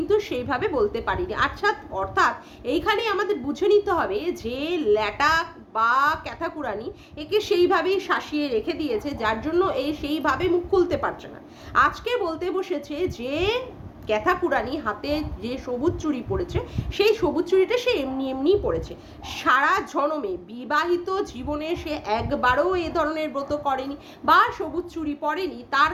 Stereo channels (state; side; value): identical; both; correlation 1.00